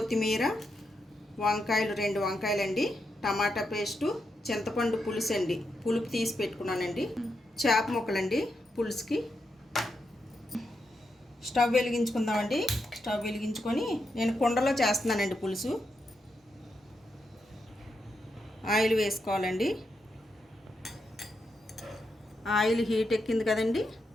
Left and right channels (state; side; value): normal; both; correlation 0.84